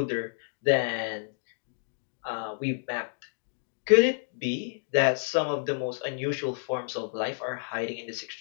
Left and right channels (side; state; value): right; silent; digital silence